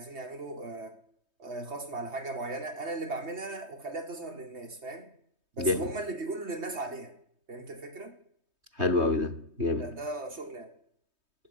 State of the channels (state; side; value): late; left; 3.2 ms